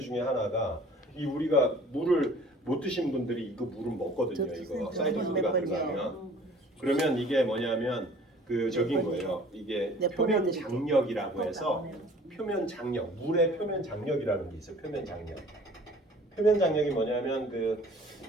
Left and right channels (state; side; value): normal; both; correlation 0.50